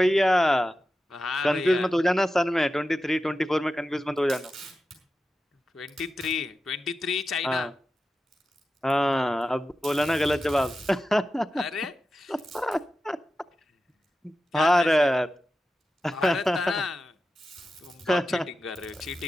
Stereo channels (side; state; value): both; normal; correlation 0.92